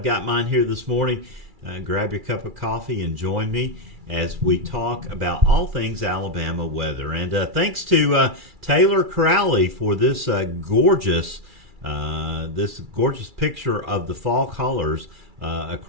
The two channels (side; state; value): left; late; 2.3 ms